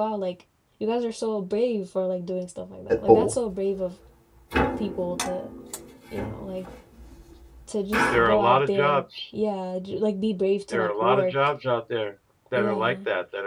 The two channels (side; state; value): both; identical; correlation 1.00